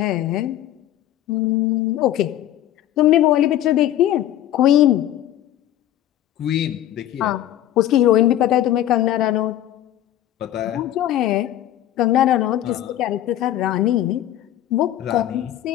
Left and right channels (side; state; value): right; quieter; 12.7 dB